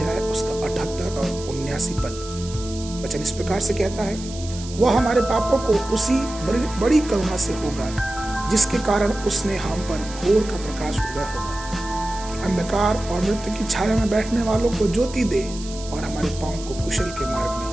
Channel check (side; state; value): right; noise; hiss, 14 dB below the sound